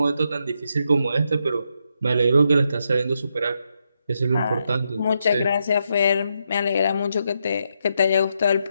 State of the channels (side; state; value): both; inverted; correlation -0.81